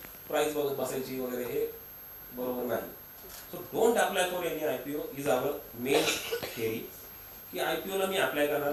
प्राइस बघत बसायची वगैरे हे बरोबर नाही. So don't apply for any IPO is our main theory. की IPOला मी अप्लाय करणार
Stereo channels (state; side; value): identical; both; correlation 1.00